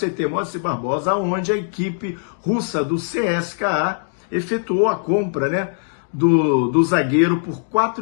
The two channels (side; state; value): right; silent; digital silence